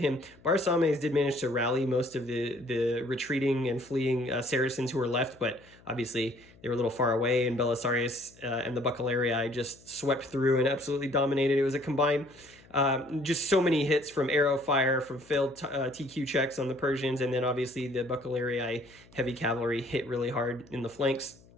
Barasames did manage to rally most of the retreating and fleeing Saracens who were left, but obviously they were a little far away, and Belisarius and the Buccalarii just swept through and absolutely dominated. It was a combined, just so many hits from arrow fire, from failed TQ checks on the Persians, and then obviously the Buccalarii heavy cavalry hit really hard in the flanks.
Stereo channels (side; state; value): left; noise; hum, 26 dB below the sound